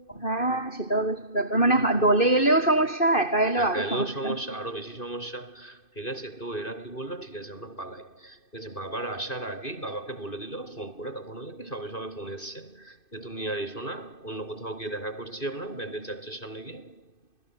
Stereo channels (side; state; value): right; late; 2.6 ms